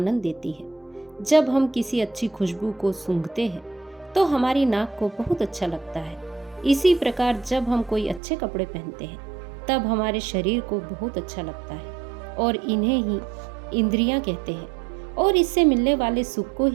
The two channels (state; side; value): drops out; left; at 8.2 s